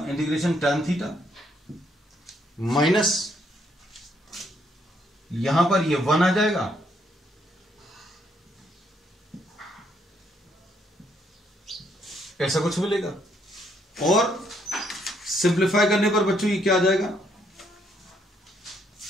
इंटीग्रेशन tan थीटा माइनस यहां पर ये 1 आ जाएगा, ऐसा कुछ मिलेगा। और सिंप्लीफाई करने पर बच्चों ये क्या आ जाएगा,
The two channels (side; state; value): both; normal; correlation 0.71